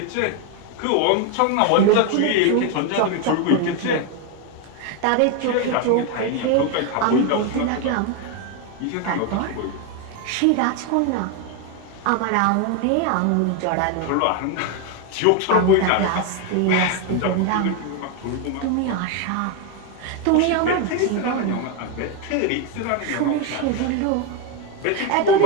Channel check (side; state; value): both; different; correlation 0.01